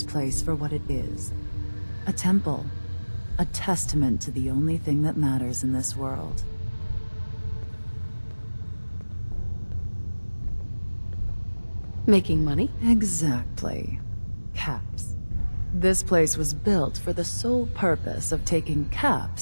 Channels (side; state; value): both; inverted; correlation -1.00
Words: place for what it is. A temple. A testament to the only thing that matters in this world. Making money? Exactly. Caps. This place was built for the sole purpose of taking